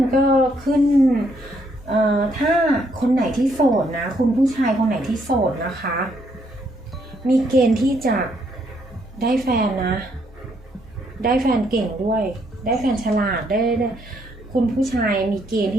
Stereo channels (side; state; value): both; normal; correlation 0.72